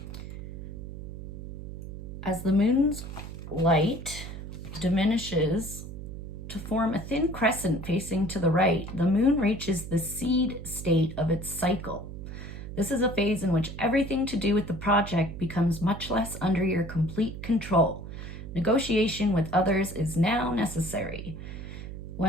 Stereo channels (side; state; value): right; noise; hum, 10 dB below the sound